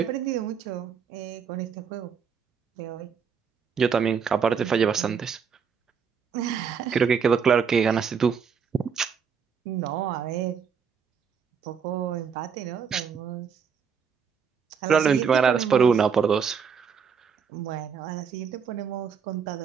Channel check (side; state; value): left; quieter; 6.6 dB